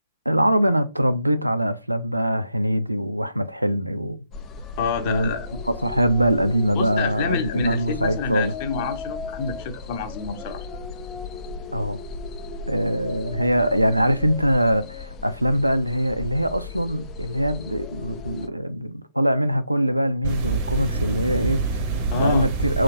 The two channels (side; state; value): both; inverted; correlation -0.79